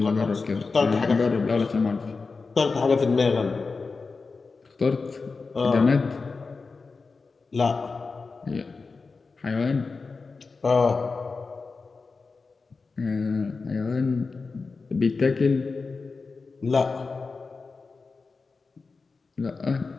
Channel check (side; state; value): right; quieter; 4.3 dB